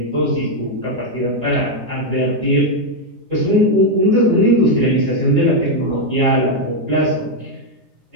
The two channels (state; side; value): late; left; 9.8 ms